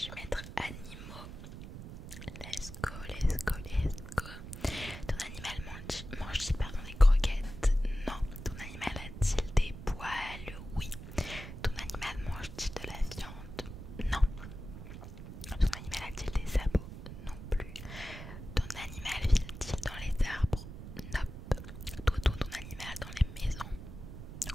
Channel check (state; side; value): noise; right; rumble, 11 dB below the sound